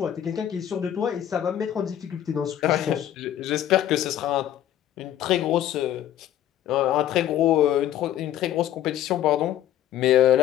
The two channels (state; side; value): quieter; right; 11.6 dB